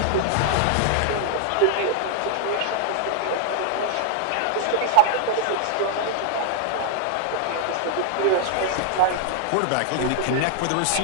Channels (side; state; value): both; different; correlation 0.00